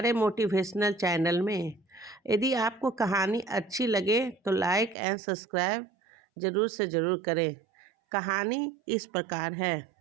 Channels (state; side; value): drops out; left; at 5.0 s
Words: मोटिवेशनल चैनल में। यदि आपको कहानी अच्छी लगे तो लाइक एंड सब्सक्राइब ज़रूर से ज़रूर करें। कहानी इस प्रकार है।